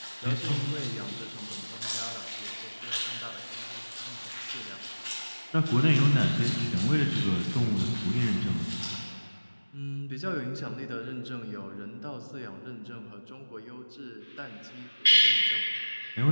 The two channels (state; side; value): inverted; both; correlation -1.00